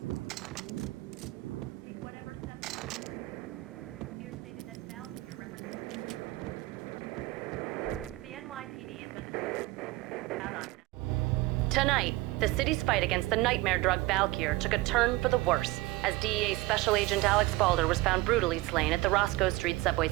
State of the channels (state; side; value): quieter; left; 19.6 dB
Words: Tonight, the city's fight against the nightmare drug Valkyr took a turn for the worse, as DEA Special Agent Alex Balder was found brutally slain at the Roscoe Street subway